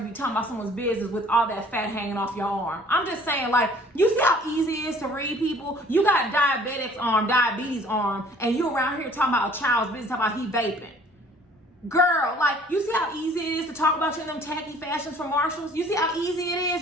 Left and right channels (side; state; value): both; normal; correlation 0.54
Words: be talking about someone's business with all that fat hanging off your arm. I'm just saying, like, you see how easy it is to read people? You got diabetics arm, diabetes arm, and you around here talking about a child's business, talking about he vaping. Girl, like, you see how easy it is to talk about you in them tacky fashions from Marshalls? You see how easy it